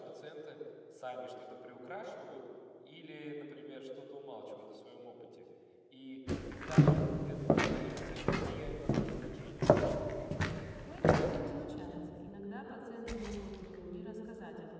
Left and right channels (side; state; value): both; identical; correlation 1.00